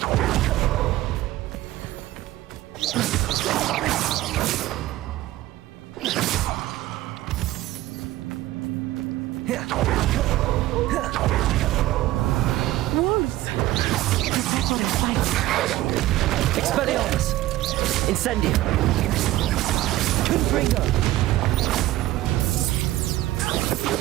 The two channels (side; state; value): left; quieter; 16.0 dB